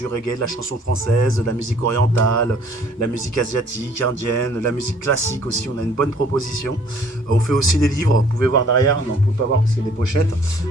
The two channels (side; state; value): both; normal; correlation 0.58